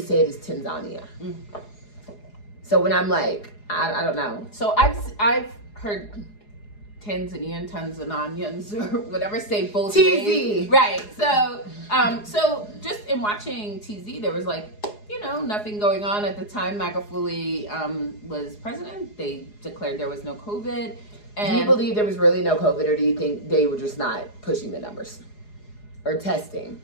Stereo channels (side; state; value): right; late; 4.8 ms